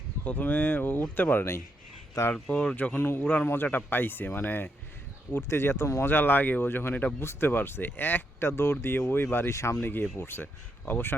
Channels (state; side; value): normal; both; correlation 0.80